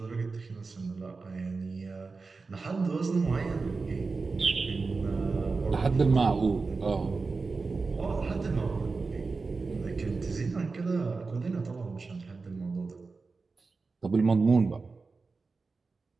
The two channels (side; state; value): left; quieter; 4.2 dB